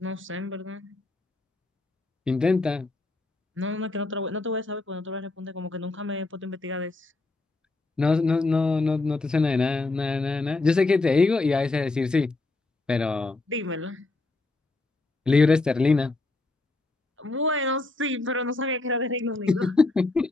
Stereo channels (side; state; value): right; quieter; 3.2 dB